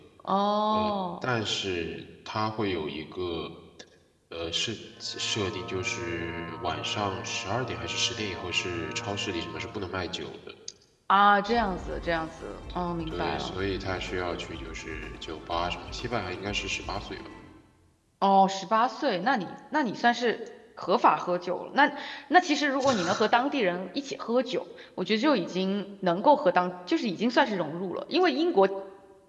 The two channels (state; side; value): identical; both; correlation 1.00